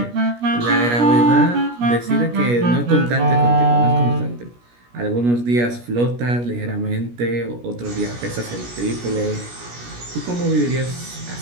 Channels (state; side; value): late; left; 17 ms